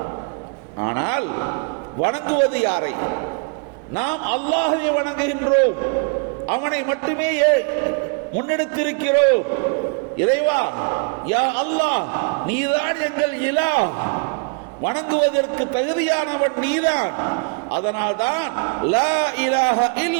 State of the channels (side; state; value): left; quieter; 36.7 dB